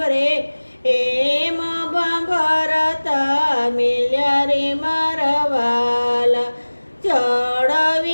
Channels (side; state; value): both; inverted; correlation -1.00